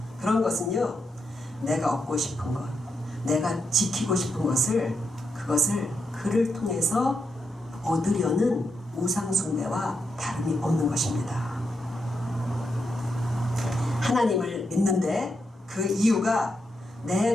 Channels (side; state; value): both; normal; correlation 0.83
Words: 그런 것은요, 내가 얻고 싶은 것, 내가 지키고 싶은 것을, 그것을 그를 통해서 얻으려는 우상 숭배와 다름이 없는 것입니다. 하나님을 믿는데 그 이유가